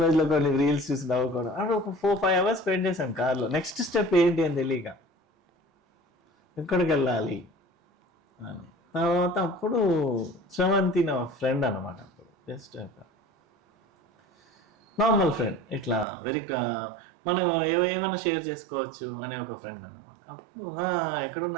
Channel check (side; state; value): left; drops out; at 16.1 s